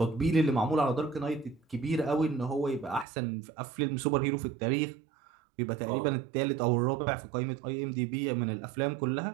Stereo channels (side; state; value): left; drops out; at 3.1 s